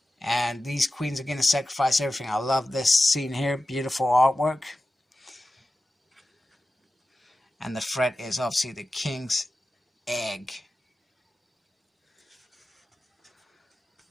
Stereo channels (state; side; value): normal; both; correlation 0.93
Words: And these queens are going to sacrifice everything. I love this scene here. Beautiful artwork. And the threat is obviously the King's Egg,